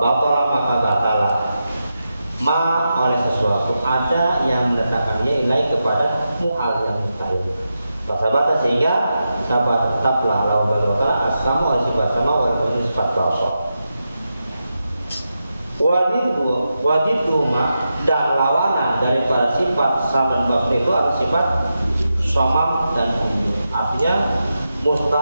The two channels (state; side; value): inverted; both; correlation -0.89